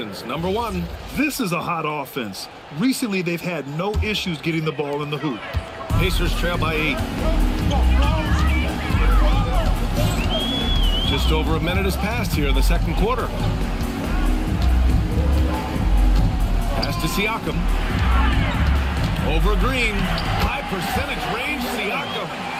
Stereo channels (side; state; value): both; identical; correlation 1.00